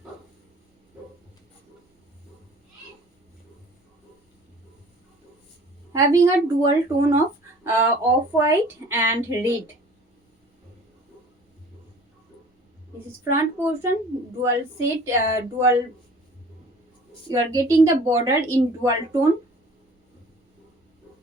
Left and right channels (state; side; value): normal; both; correlation 0.48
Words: Having a dual tone of off-white and red. This is front portion, dual set, dual. You are getting the border in dual tone.